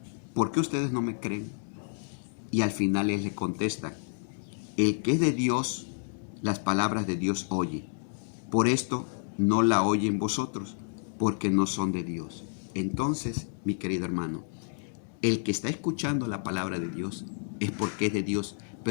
¿por qué ustedes no me creen? Y al final él le contesta, el que es de Dios, las palabras de Dios oye. Por esto no la oyen vosotros, porque no son de Dios. Entonces, mi querido hermano, el que está escuchando la palabra de Dios es porque es de Dios,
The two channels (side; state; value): right; silent; digital silence